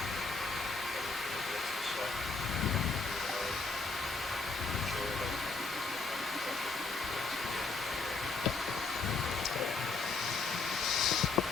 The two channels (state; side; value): quieter; right; 4.1 dB